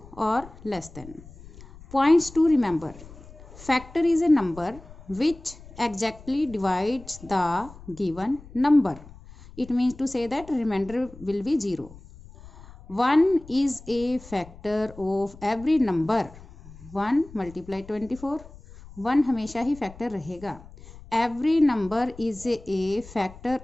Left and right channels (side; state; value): left; noise; rumble, 19 dB below the sound